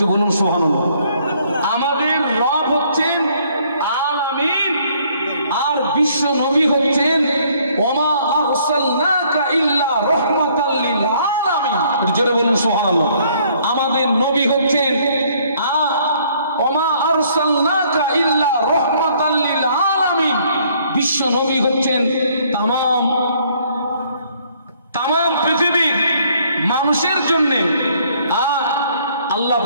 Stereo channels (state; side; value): inverted; both; correlation -0.64